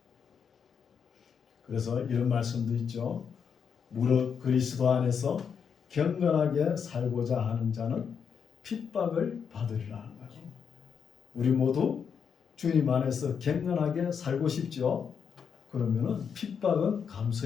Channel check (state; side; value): quieter; right; 6.8 dB